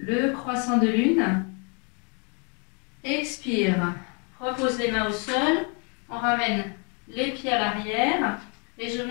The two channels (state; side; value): quieter; right; 36.1 dB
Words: le croissant de lune. Expire, repose les mains au sol, on ramène les pieds à l'arrière et je